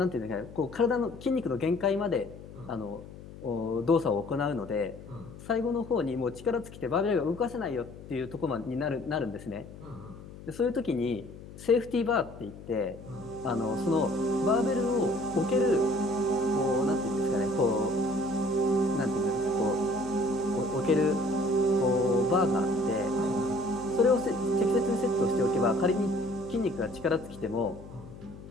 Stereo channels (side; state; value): left; noise; hum, 16 dB below the sound